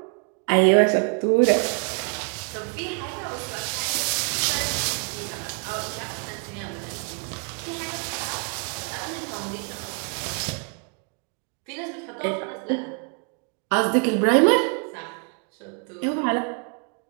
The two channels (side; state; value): left; quieter; 38.1 dB